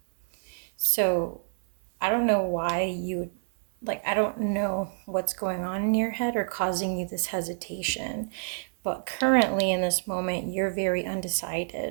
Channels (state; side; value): silent; left; 60 dB below the other